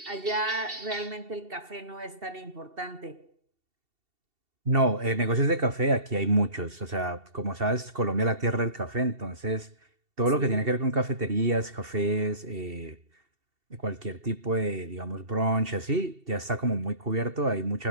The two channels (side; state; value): left; late; 2.7 ms